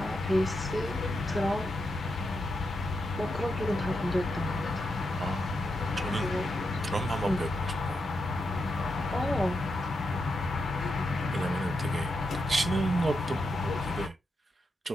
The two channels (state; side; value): normal; both; correlation 0.84